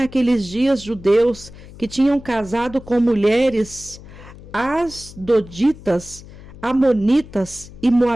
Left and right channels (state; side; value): noise; left; hum, 18 dB below the sound